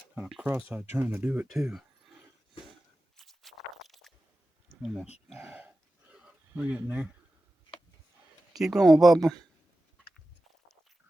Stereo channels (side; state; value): both; normal; correlation 0.94